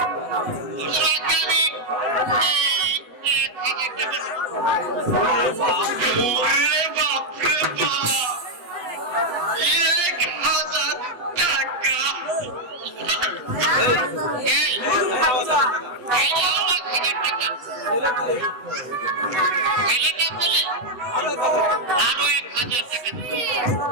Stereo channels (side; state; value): left; late; 7.9 ms